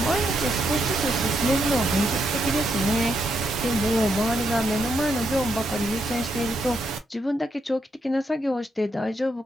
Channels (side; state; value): both; normal; correlation 0.79